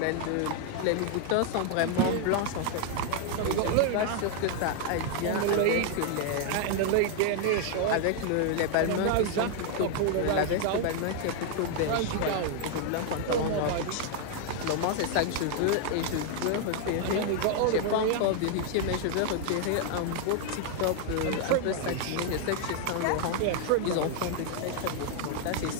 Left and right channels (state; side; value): different; both; correlation 0.00